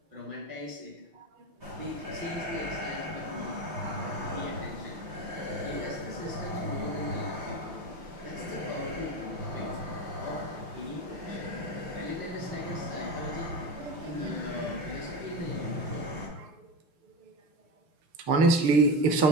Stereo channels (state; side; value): late; left; 6.7 ms